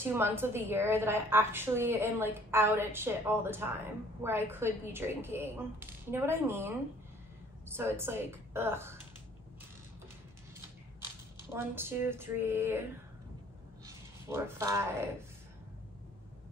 months of the year that I actually am like out at shit all the time, where I could be drinking. You know what I mean? So it's like, ugh. 1, 2, 3, 4, 5,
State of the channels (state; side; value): normal; both; correlation 0.56